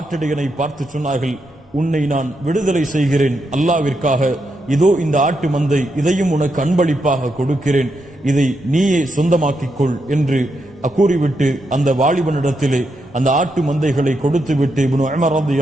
பார்த்து சொன்னார்கள், உன்னை நான் விடுதலை செய்கிறேன் அல்லாவிற்காக. இதோ இந்த ஆட்டு மந்தை, இதையும் உனக்கு அன்பளிப்பாக கொடுக்கிறேன், இதை நீயே சொந்தமாக்கிக் கொள் என்று கூறிவிட்டு அந்த வாலிபனிடத்திலே அந்த ஆட்டு மந்தைகளை கொடுத்து விட்டு இப்னு உமர்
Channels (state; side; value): normal; both; correlation 0.82